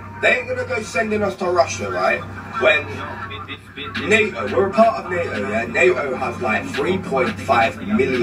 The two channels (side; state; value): both; identical; correlation 1.00